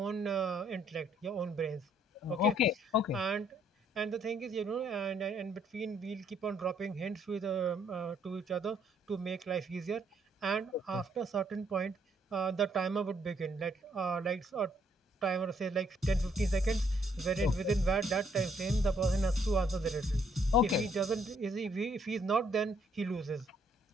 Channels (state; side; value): normal; both; correlation 0.68